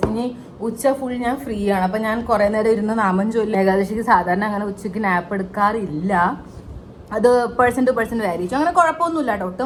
ഇനി ഉച്ച ഫുൾ ഞാൻ ഫ്രീ ആണ്. അപ്പം ഞാൻ കുറേ നേരം ഇരുന്ന് നാമം ചൊല്ലി. ഏകാദശിക്ക് സാധാരണ അങ്ങനെ ഉച്ചയ്ക്ക് നാപ്പ് എടുക്കാറില്ല. അത് പേഴ്സൺ ടു പേഴ്സൺ വേരി ചെയ്യും. അങ്ങനെ കുഴപ്പമൊന്നുമില്ല കേട്ടോ. ഒട്ടും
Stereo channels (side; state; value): both; identical; correlation 1.00